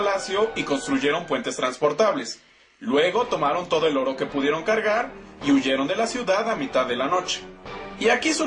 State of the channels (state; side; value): identical; both; correlation 1.00